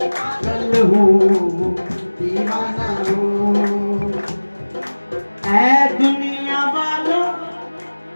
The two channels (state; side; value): inverted; both; correlation -1.00